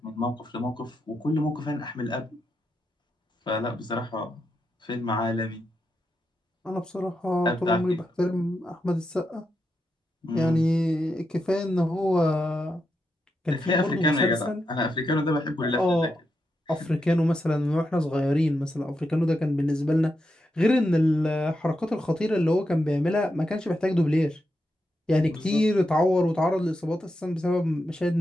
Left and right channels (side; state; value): both; normal; correlation 0.85